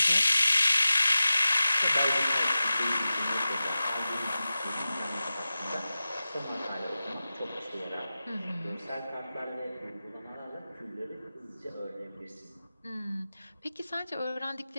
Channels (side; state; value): both; inverted; correlation -0.95